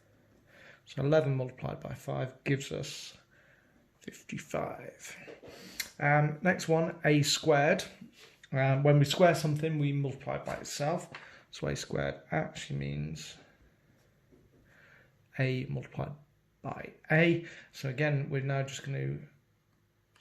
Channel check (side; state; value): both; identical; correlation 1.00